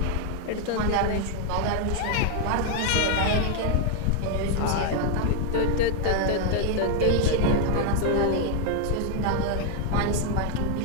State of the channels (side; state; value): both; different; correlation 0.00